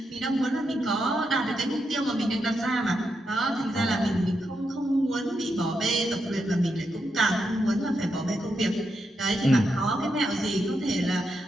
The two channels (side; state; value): both; normal; correlation 0.83